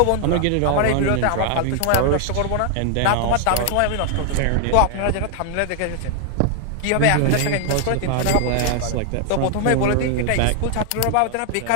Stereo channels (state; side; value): different; both; correlation 0.00